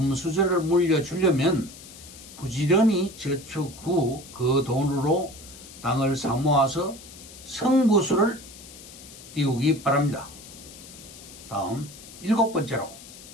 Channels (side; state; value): left; noise; hiss, 17 dB below the sound